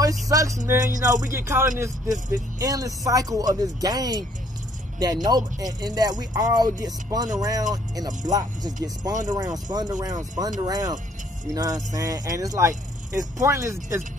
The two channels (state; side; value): normal; both; correlation 0.63